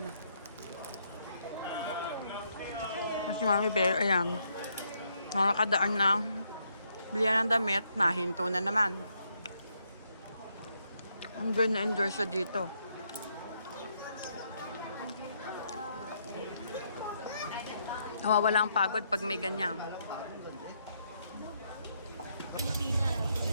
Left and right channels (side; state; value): both; inverted; correlation -0.75